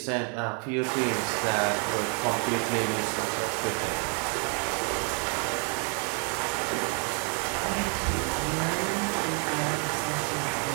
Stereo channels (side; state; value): left; quieter; 39.0 dB